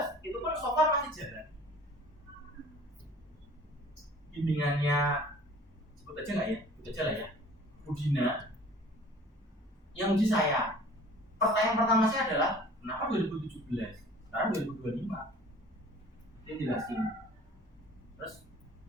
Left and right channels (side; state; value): both; normal; correlation 0.48